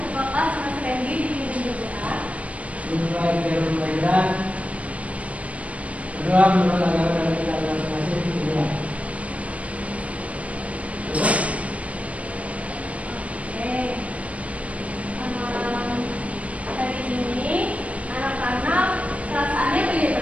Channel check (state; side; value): late; left; 0.065 ms